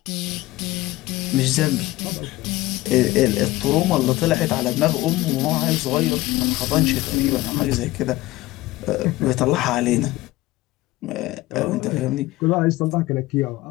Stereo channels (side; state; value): right; quieter; 18.1 dB